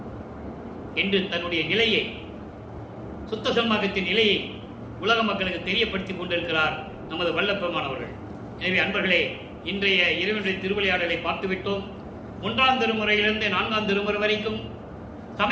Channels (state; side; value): identical; both; correlation 1.00